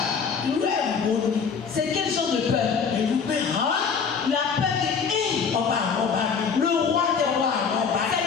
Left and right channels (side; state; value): right; quieter; 6.1 dB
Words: C'est quel genre de peur? La peur de le roi des rois. C'est